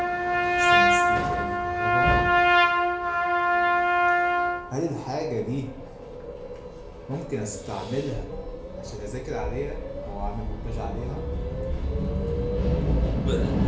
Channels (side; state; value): both; identical; correlation 1.00